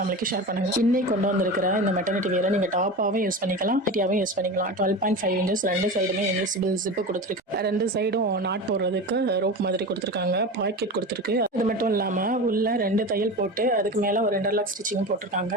ஷேர் பண்ணுங்கள். இன்னைக்கு கொண்டு வந்திருக்கிற இந்த மெட்டர்னிட்டி வியரை நீங்கள் டாப்பாகவும் யூஸ் பண்ணிக்கலாம், ஹெட்டியாகவும் யூஸ் பண்ணிக்கலாம். 12.5 inches ரெண்டு சைடுமே இன்விசிபிள் ஜிப்பு கொடுத்துருக்கு. ரெண்டு சைடும் நாட் போடுறதுக்கு ரோப் மாதிரி கொடுத்துருக்காங்க, பாக்கெட் கொடுத்துருக்கு. அது மட்டும் இல்லாமல் உள்ள ரெண்டு தையல் போட்டு அதுக்கு மேலே ஒரு இன்டர்லாக் ஸ்டிச்சிங் போட்டிருக்காங்க.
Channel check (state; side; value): normal; both; correlation 0.28